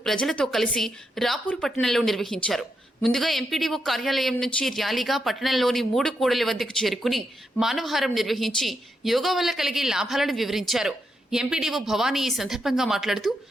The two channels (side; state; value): both; normal; correlation 0.82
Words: ప్రజలతో కలిసి రాపూరు పట్టణంలో నిర్వహించారు. ముందుగా ఎంపీడీఓ కార్యాలయం నుంచి ర్యాలీగా పట్టణంలోని 3 కూడలి వద్దకు చేరుకుని మానవహారం నిర్వహించి యోగా వల్ల కలిగే లాభాలను వివరించారు. ఎంపీడీఓ భవానీ ఈ సందర్భంగా మాట్లాడుతూ